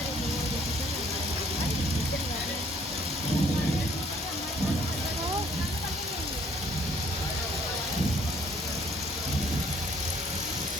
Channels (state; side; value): normal; both; correlation 0.62